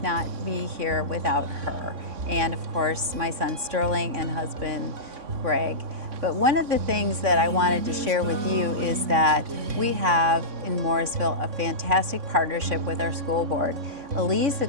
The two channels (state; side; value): late; left; 3.6 ms